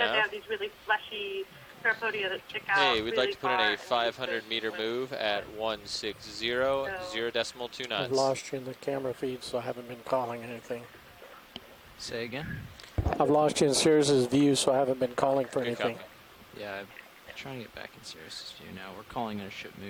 now? they have these really fleshy parapodia that stick out. Hey, we'd really like to put in far a and 500-meter move at 160, 0.2 I've knots. lost you in the camera feed, so I haven't been calling anything. Say again? I've lost you in Sirius's view, so I haven't been calling for Good anything. copy. Yeah, I'm trying to get back in Sirius's view now. We're calling in a ship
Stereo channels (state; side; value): identical; both; correlation 1.00